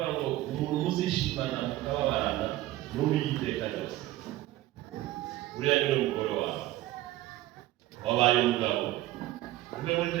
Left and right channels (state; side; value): quieter; left; 15.9 dB